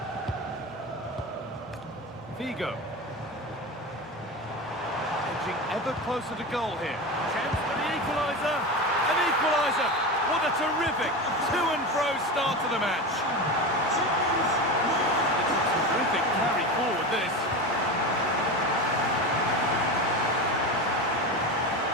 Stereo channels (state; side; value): normal; both; correlation 0.24